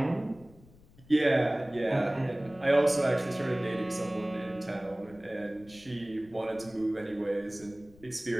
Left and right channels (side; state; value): left; noise; rumble, 24 dB below the sound